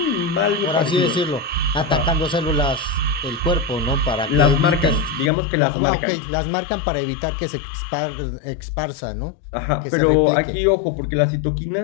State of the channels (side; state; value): right; drops out; at 5.3 s